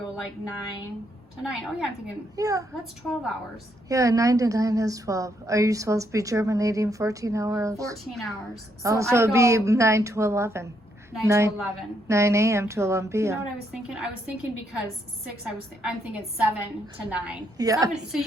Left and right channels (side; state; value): both; normal; correlation 0.75